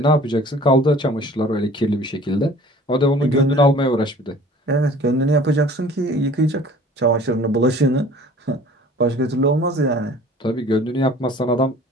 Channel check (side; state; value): both; normal; correlation 0.48